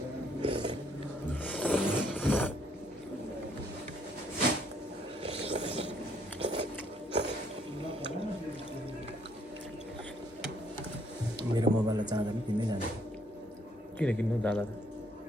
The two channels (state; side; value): normal; both; correlation 0.68